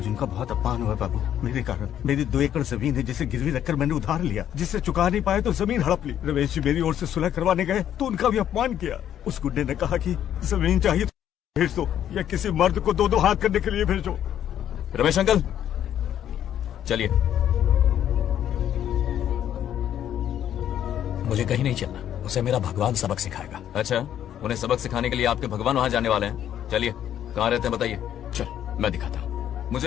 उनका बहुत अपमान हुआ बाबू, मेरे कारण। मेरी 2 एकड़ जमीन है जिसे गिरवी रखकर मैंने उधार लिया, जिसे चुका नहीं पाए तो जमीन हड़प ली। रमेश जी मेरी ओर से सुलह करवाने गए तो उनका भी अपमान किया। उस गुंडे ने कहा कि जमीन चाहिए तो भेज दो, या किसी मर्द को 2-2 हाथ करने के लिए भेजो। रमेश अंकल चलिए। मुझे कहीं नहीं चलना, उसे मेरा भगवान सबक सिखाएगा। अच्छा, उन्हें सबक सिखाने के लिए आपके भगवान वहाँ जाने वाले हैं। चलिए, कहाँ रहते हैं बताइए। चल मैं दिखाता हूँ।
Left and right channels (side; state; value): right; quieter; 10.5 dB